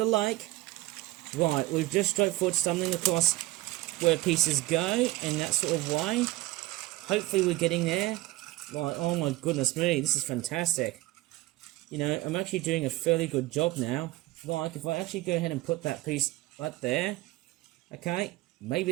lake. Right, we've just straightforward stumbling across where pieces go in that sort of way. Hopefully we're getting there. Right, oh my goodness me, this is fantastic. You know, I'm actually doing a fairly good job now. Like, if I actually go ahead and put that piece right there, Okay,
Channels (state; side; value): quieter; left; 18.4 dB